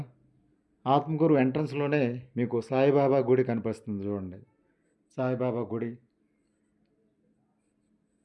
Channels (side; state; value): both; identical; correlation 1.00